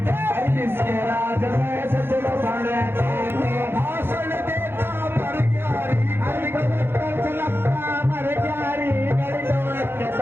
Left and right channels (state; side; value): late; left; 0.11 ms